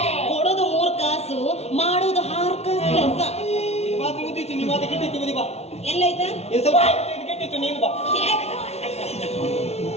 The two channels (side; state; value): right; late; 0.31 ms